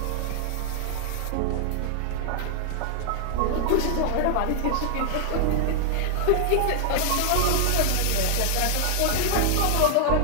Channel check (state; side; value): different; both; correlation 0.00